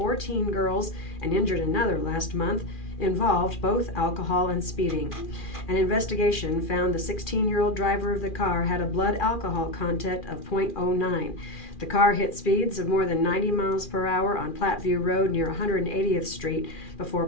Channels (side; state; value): right; late; 2.4 ms